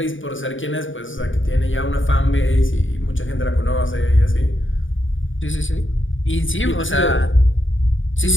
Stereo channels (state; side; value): late; right; 0.57 ms